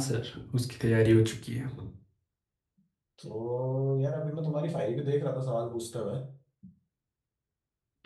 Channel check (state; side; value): identical; both; correlation 1.00